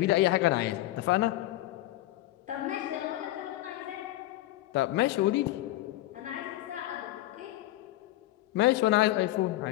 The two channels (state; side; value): quieter; right; 15.9 dB